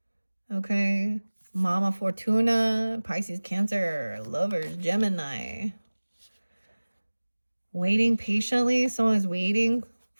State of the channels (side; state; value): both; inverted; correlation -1.00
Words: Okay. Mama Fortuna, Pisces, Cancer, Lovers, Gemini. Waiting patiently. Someone is waiting